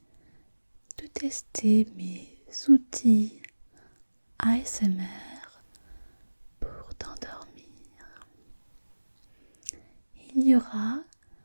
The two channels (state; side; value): inverted; both; correlation -1.00